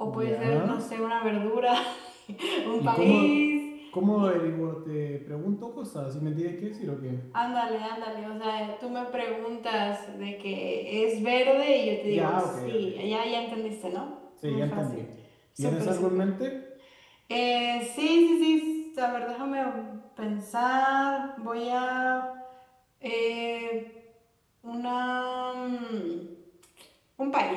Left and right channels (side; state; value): both; identical; correlation 1.00